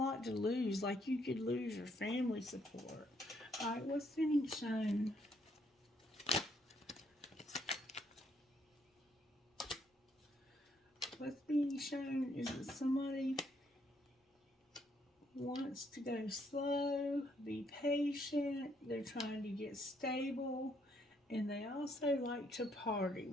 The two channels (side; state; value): both; normal; correlation 0.71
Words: to lose, like you could lose your family support. Alright, what's being shown? What's being shown is that somebody wants to go slow, be patient, they're trying to get stable, and they also like to party